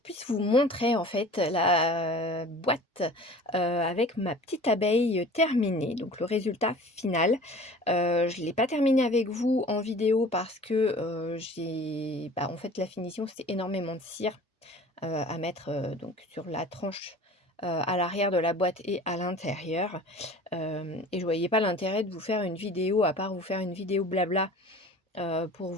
vous montrer en fait la boîte, avec ma petite abeille terminée, donc le résultat final. Je ne l'ai pas terminée avec vous en vidéo parce que, en fait la finition c'est énormément de cire, à mettre, donc sur la tranche, à l'arrière de la boîte et à l'intérieur. Et je voyais pas l'intérêt de vous faire une vidéo, à part vous faire une vidéo blabla, pour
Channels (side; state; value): both; normal; correlation 0.44